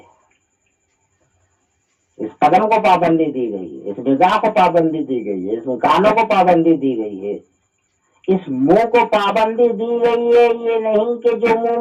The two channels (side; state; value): both; identical; correlation 1.00